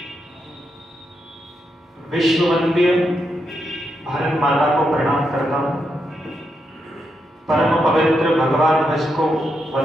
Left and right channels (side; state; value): both; normal; correlation 0.83